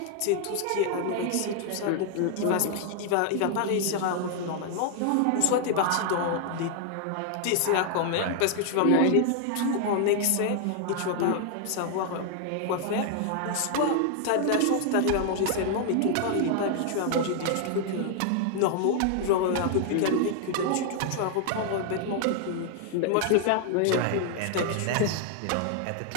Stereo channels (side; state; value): both; different; correlation 0.00